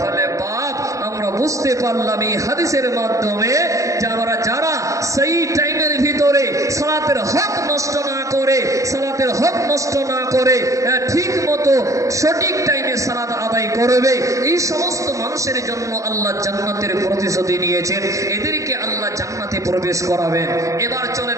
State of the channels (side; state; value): left; late; 0.16 ms